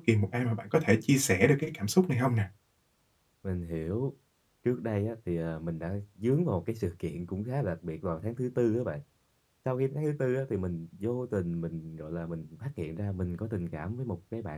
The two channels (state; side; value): identical; both; correlation 1.00